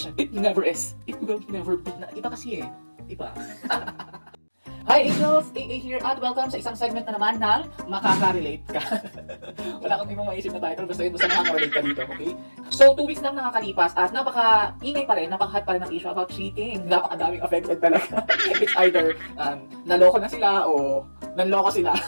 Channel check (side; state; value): both; inverted; correlation -1.00